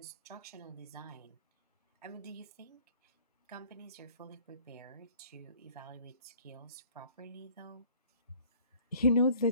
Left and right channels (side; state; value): both; inverted; correlation -0.54